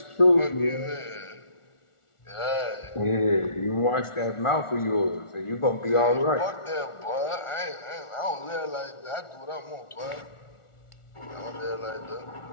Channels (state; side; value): late; right; 1.4 ms